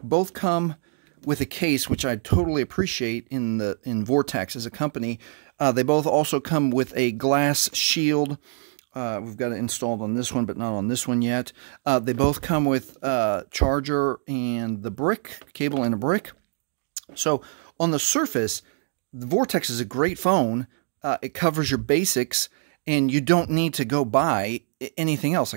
Both come with a case, which I totally appreciate in Vortex as a company. They both also come with a glass shield. We've got it installed on this one, but not on this one yet. They both come with charger and the brick, cable and a brick. So on the surface, the Vortex is a great phone. It covers your basics, and you don't need to go buy anything else.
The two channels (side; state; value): left; silent; 62 dB below the other